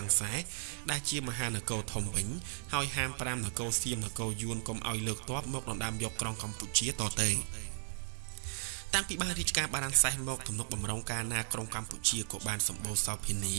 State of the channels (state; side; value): silent; left; digital silence